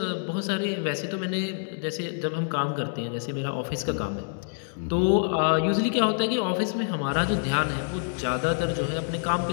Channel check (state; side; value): silent; right; 60 dB below the other